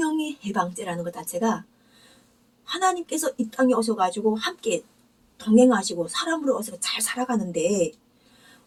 해방죄라는 것 자체가 하나님께서 이 땅에 오셔가지고 함께 동행하시고 사람으로 오셔서 잘 살아가는데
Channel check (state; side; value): identical; both; correlation 1.00